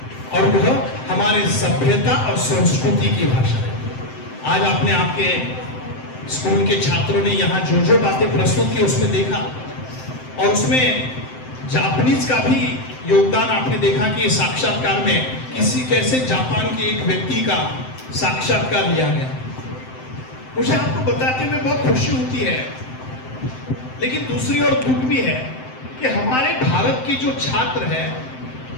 और वह हमारे सभ्यता और संस्कृति की भाषा है। आज आपने आपके स्कूल के छात्रों ने यहाँ जो बातें प्रस्तुत की उसमें देखा और उसमें जापानीज का भी योगदान आपने देखा कि साक्षात्कार में कैसे जापान के एक व्यक्ति का साक्षात्कार लिया गया। मुझे आपको बताते हुए बहुत खुशी होती है, लेकिन दूसरी ओर दुख भी है कि हमारे भारत के जो छात्र है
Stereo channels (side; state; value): right; late; 7.8 ms